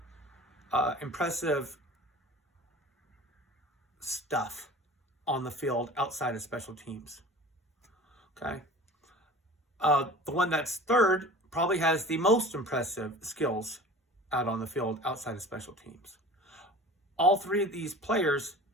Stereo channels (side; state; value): both; normal; correlation 0.39